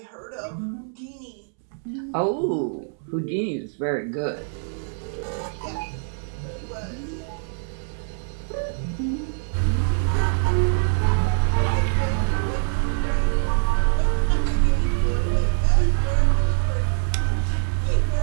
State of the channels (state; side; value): silent; left; 63 dB below the other